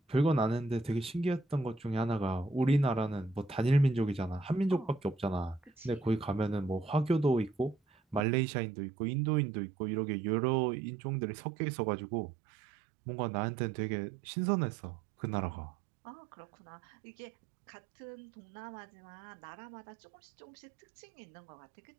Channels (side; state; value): left; drops out; at 8.2 s